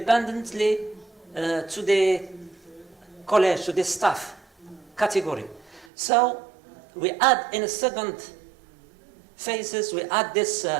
to the college, to the staff category. So we add in a second phases, we add this,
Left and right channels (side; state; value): left; drops out; at 5.9 s